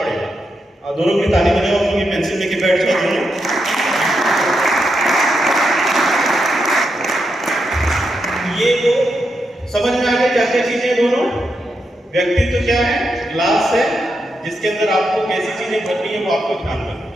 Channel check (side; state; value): both; normal; correlation 0.84